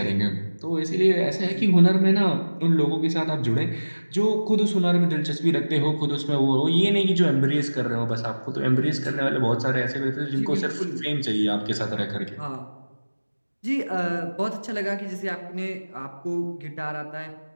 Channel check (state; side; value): inverted; both; correlation -1.00